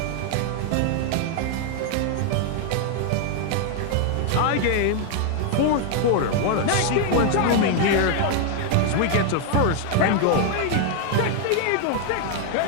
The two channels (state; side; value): different; both; correlation 0.00